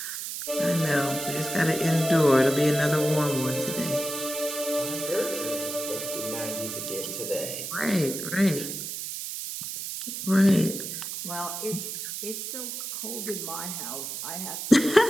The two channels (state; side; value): noise; right; hiss, 6 dB below the sound